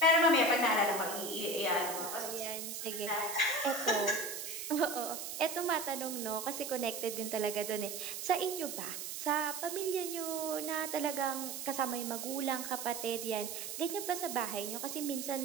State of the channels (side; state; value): right; noise; hiss, 6 dB below the sound